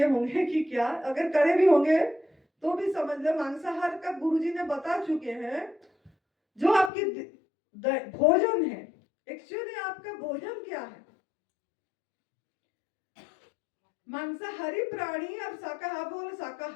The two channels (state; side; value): drops out; right; at 6.9 s